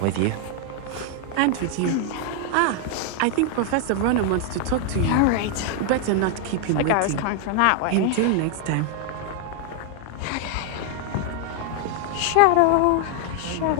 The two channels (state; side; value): different; both; correlation 0.00